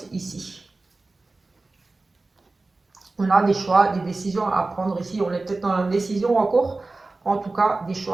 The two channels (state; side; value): quieter; left; 3.3 dB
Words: ici. On a des choix, des décisions à prendre ici, on est peut-être dans la décision encore, en tout cas des